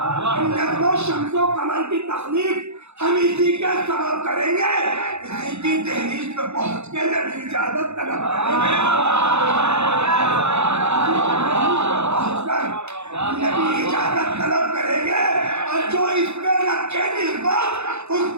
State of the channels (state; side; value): late; left; 0.81 ms